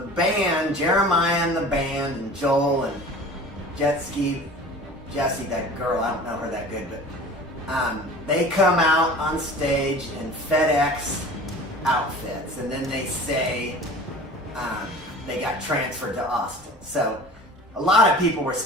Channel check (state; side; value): normal; both; correlation 0.41